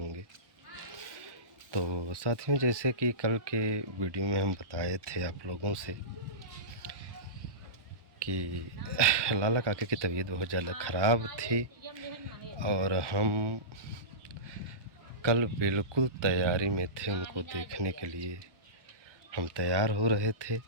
तो साथियों, जैसे कि कल के वीडियो में हम बताए थे आप लोगों से कि लाला काका की तबीयत बहुत ज़्यादा ख़राब थी और हम कल बिल्कुल तैयारी में थे उनको देखने के लिए। हम तैयार हो रहे थे,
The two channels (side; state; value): left; late; 1.1 ms